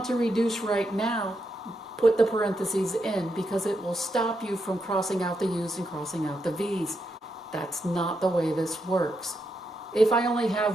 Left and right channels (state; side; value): normal; both; correlation 0.83